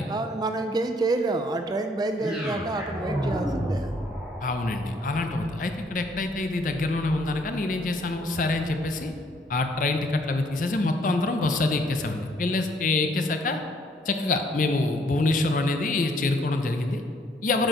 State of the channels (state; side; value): normal; both; correlation 0.65